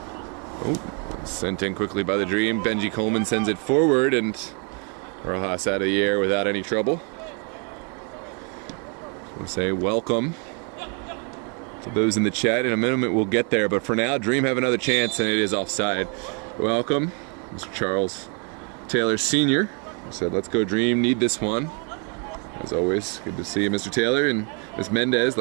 Oh, sent in quickly by the Dream. Benji Coleman sends it forward, and Rojas out of the air without any trouble. We'll say welcome to those in the chat. In a minute we'll get there, but for now, Dream have another chance, and it is offside. Welcome, Mr. Charles Taylor Sr. Said, let's go Dream, need this one. As always, good to see you, Mr. Taylor. And Ms. Mendez,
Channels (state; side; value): quieter; left; 37.3 dB